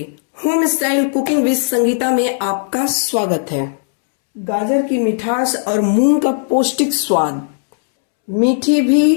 Home style cooking with Sangeeta में आपका स्वागत है। गाजर की मिठास और मूंग का पौष्टिक स्वाद, मीठी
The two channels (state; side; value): silent; right; 69 dB below the other